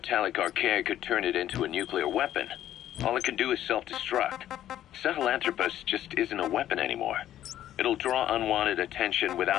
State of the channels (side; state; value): right; quieter; 12.1 dB